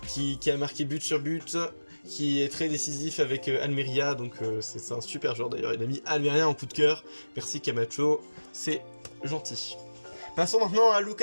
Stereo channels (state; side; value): inverted; both; correlation -1.00